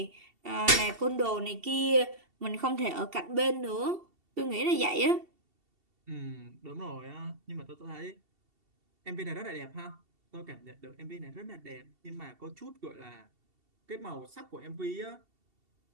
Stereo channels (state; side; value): late; left; 2.7 ms